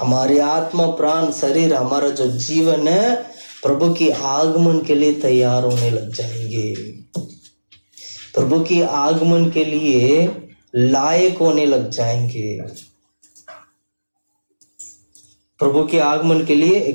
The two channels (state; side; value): inverted; both; correlation -1.00